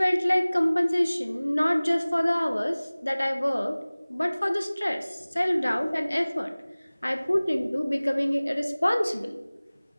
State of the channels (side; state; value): both; inverted; correlation -0.99